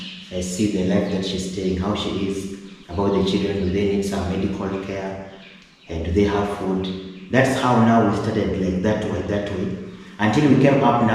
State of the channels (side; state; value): both; identical; correlation 1.00